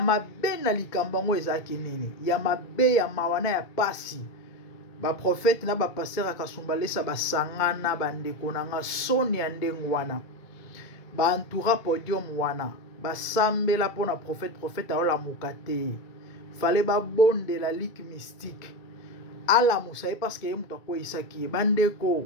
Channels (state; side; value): late; right; 2.2 ms